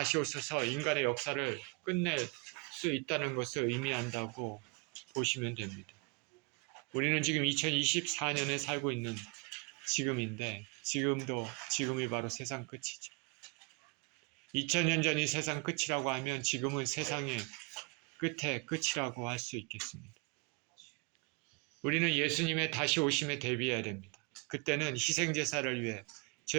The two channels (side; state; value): left; quieter; 31.3 dB